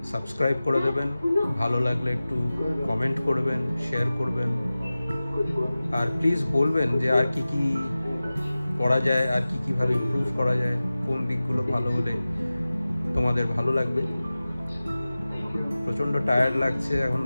সাবস্ক্রাইব করে দেবেন, ভালো লাগলে একটু কমেন্ট করবেন, শেয়ার করবেন, আর প্লিজ বলবেন যে আর কি কি করা যায়, আর কি কিভাবে ইমপ্রুভ করা যায়, কোন দিকগুলো ভালো হলে তোমাদের ভালো লাগবে। প্রচণ্ড টায়ার্ড লাগছে, এখন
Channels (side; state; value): both; inverted; correlation -0.97